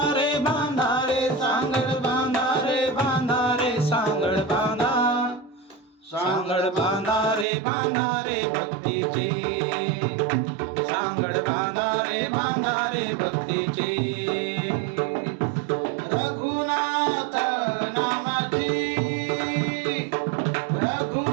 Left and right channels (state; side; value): drops out; left; at 7.5 s